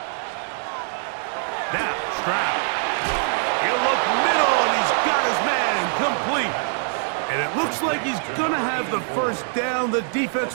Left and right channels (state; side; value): silent; left; 56 dB below the other